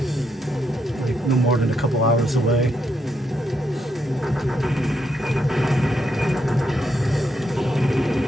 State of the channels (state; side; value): normal; both; correlation 0.79